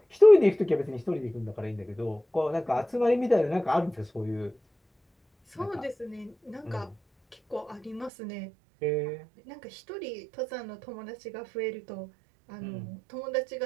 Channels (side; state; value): left; drops out; at 8.1 s